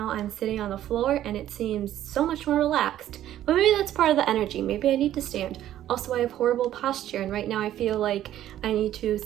I'm sitting on the floor and it seems so much more relaxed. But maybe that's part of the energy, maybe I need to stand. Also, I have horrible posture, and right now I feel like I need to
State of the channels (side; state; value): left; quieter; 12.3 dB